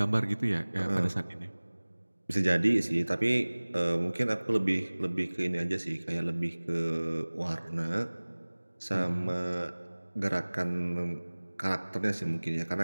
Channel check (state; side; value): inverted; both; correlation -1.00